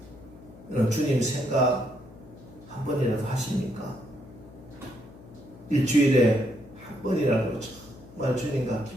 여러분 주님 생각 한 번이라도 하십니까? 일주일에 한 번이라도 정말 주님과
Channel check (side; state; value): left; noise; hum, 20 dB below the sound